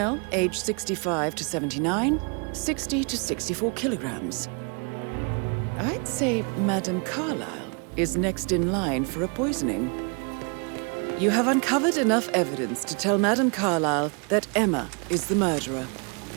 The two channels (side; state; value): left; quieter; 36.0 dB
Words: age 65 to 79, 60 to 64 kilograms. I'd say Madame Carlyle is next in line for a poisoning. You have uncovered enough evidence to tell Madame Carlyle that Emma is the murderer.